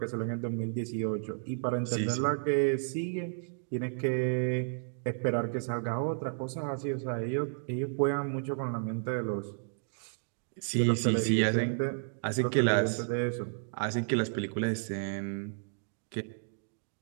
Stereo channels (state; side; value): silent; left; digital silence